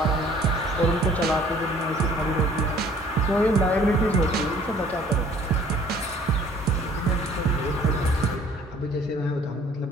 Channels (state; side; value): normal; both; correlation 0.55